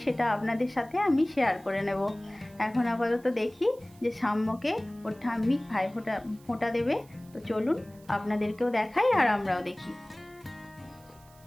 সেটা আপনাদের সাথে আমি শেয়ার করে নেব। এখন আপাতত দেখি যে সাম্যকে ওর ঠাম্মি ভাই ফোঁটা দেবে। তো চলুন আপনাদেরকেও দেখাই আর আমরাও দেখি।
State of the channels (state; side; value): noise; right; hiss, 27 dB below the sound